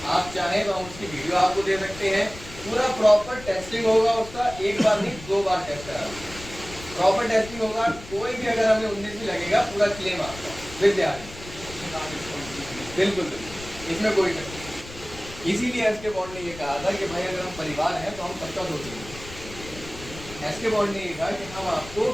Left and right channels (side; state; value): left; noise; rumble, 15 dB below the sound